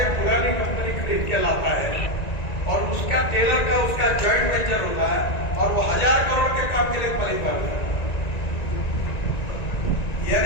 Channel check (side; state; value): right; late; 1.9 ms